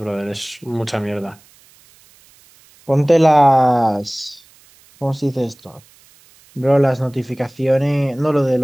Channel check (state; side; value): noise; right; hiss, 29 dB below the sound